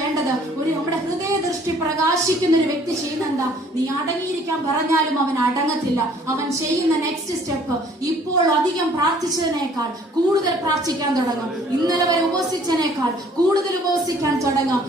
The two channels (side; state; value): both; normal; correlation 0.57